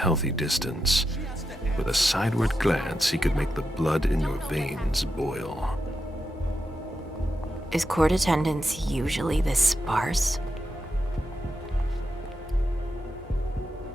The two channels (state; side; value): normal; both; correlation 0.87